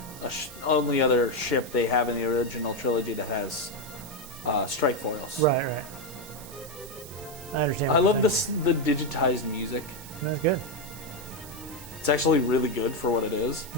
only other ship they have in the original trilogy that has strike foils. Right, right. I understand. I what love you're this the digitized music. saying. That's good. It's actually really good for what it is.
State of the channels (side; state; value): right; noise; hiss, 16 dB below the sound